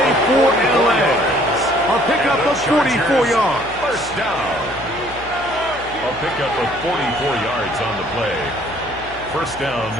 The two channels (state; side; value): noise; left; hum, 17 dB below the sound